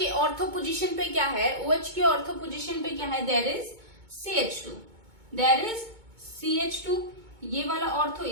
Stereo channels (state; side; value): late; left; 2.2 ms